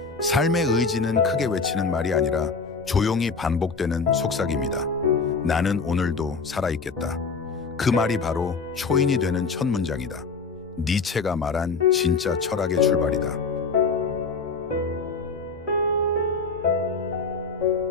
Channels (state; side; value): quieter; right; 4.5 dB